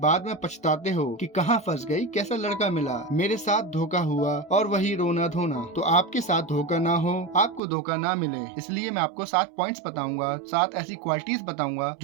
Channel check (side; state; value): left; drops out; at 7.6 s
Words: में पछताते हो कि कहाँ फंस गई, कैसा लड़का मिला, मेरे साथ धोखा हुआ और वही रोना धोना। तो आपके साथ धोखा ना हो, आपको धोखा ना मिले, इसलिए मैं आपको 7 पॉइंट्स बताऊंगा, 7 ऐसी क्वालिटीज बताऊंगा